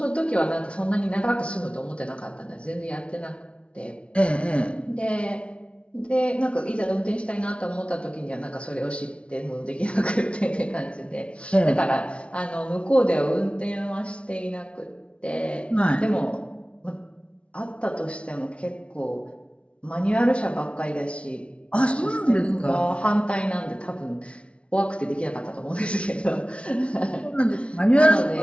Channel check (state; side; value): late; right; 0.060 ms